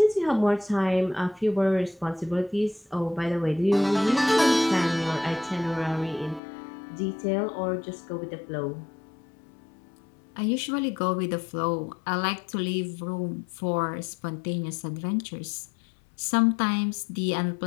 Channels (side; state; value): right; drops out; at 6.4 s